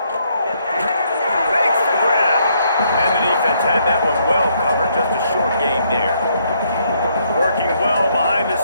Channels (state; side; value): inverted; both; correlation -0.71